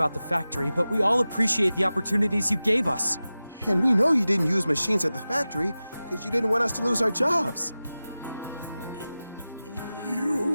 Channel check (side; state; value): both; inverted; correlation -0.95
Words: the factory, but we all appreciate the opportunities you gave us. And we know you didn't use machines at the factory because you didn't want us to lose our jobs.